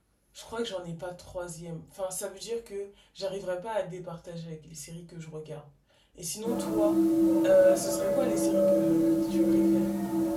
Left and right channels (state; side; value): identical; both; correlation 1.00